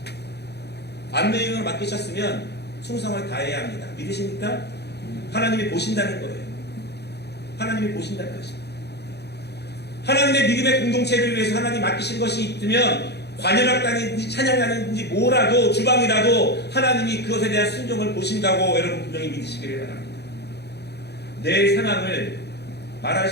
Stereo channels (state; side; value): late; right; 0.48 ms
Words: 안내인을 맡기셨으면 충성을 다해야 합니다. 믿으십니까? 하나님이 보신다는 거예요. 하나님이 보신다는 것입니다. 하나님의 믿음의 공동체를 위해서 하나님 맡기신 것이 있으면 관현악단인지 찬양하는지 뭐라도 주방이라도 하나님이 그것에 대한 순종을 보신다고 여러분 분명히 믿으시기를 바랍니다. 내 상황을 말할